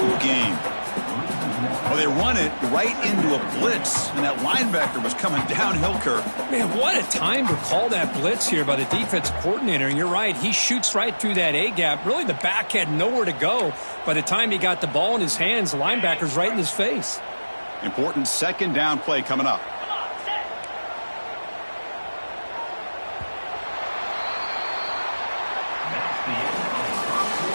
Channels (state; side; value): inverted; both; correlation -1.00